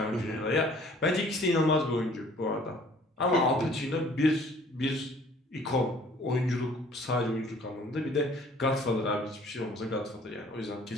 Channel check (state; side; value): normal; both; correlation 0.54